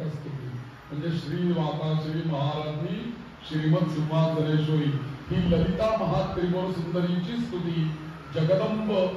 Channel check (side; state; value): both; identical; correlation 1.00